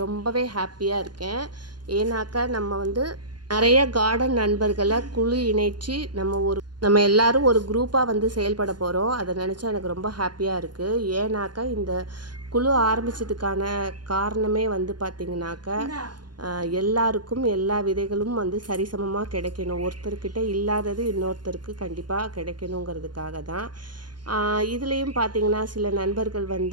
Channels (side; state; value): left; late; 0.71 ms